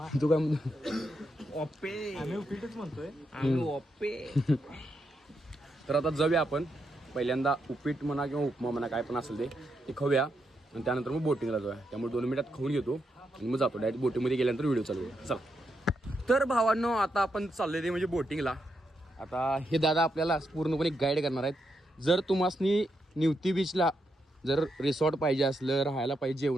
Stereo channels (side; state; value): both; normal; correlation 0.82